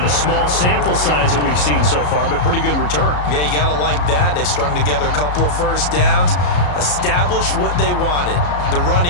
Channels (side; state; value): right; late; 34 ms